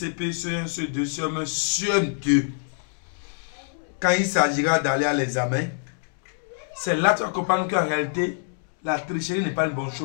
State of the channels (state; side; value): silent; right; 62 dB below the other